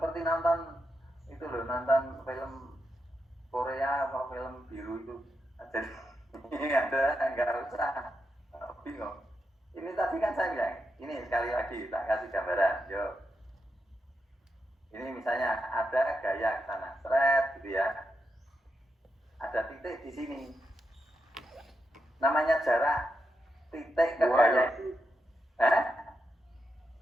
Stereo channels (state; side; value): normal; both; correlation 0.86